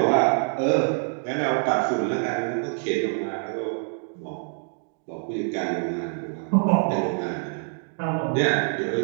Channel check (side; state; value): left; silent; 56 dB below the other